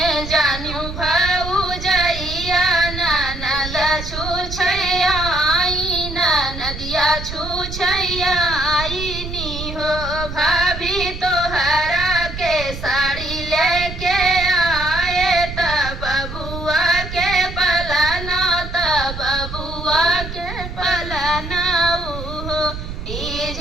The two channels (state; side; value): noise; right; rumble, 8 dB below the sound